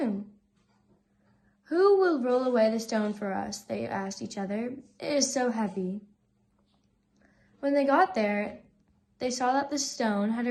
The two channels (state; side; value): identical; both; correlation 1.00